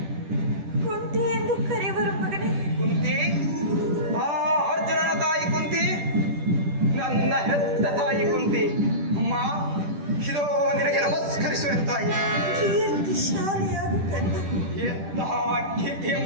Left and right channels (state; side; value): late; left; 10 ms